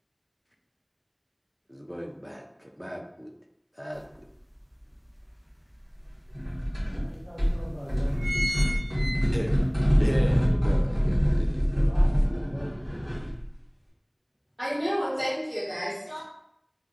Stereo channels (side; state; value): both; identical; correlation 1.00